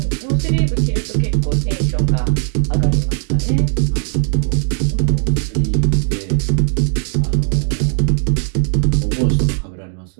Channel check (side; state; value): left; silent; 65 dB below the other